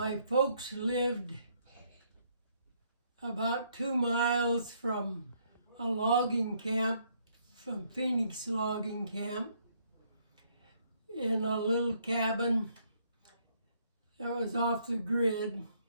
folks lived about 2 miles from a logging camp, from Phoenix Logging Camp, in a little cabin that was off the grid,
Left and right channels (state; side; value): inverted; both; correlation -0.69